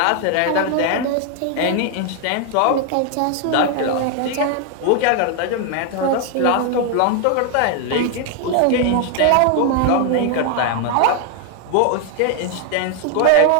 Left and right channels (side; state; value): both; different; correlation 0.00